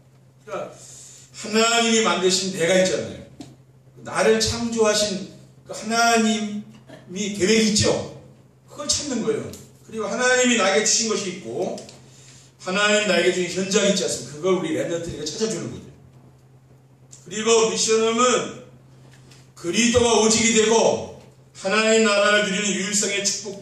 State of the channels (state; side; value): identical; both; correlation 1.00